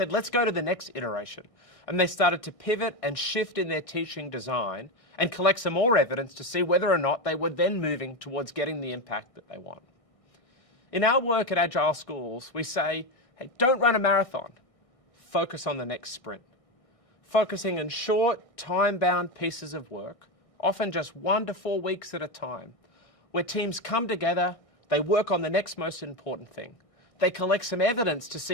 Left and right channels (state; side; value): late; right; 1.6 ms